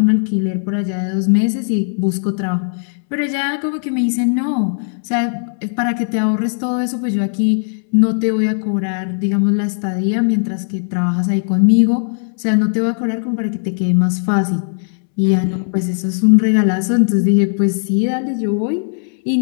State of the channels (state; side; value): silent; right; 68 dB below the other